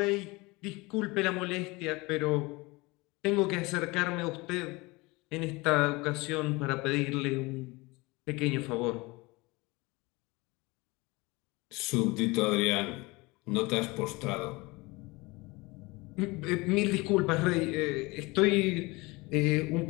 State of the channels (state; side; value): quieter; right; 23.8 dB